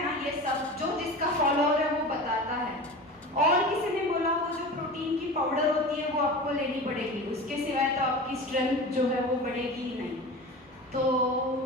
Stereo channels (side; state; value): both; normal; correlation 0.33